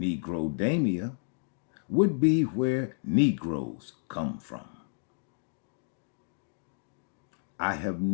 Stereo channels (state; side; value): silent; right; digital silence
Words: would be where Negroes come from. I have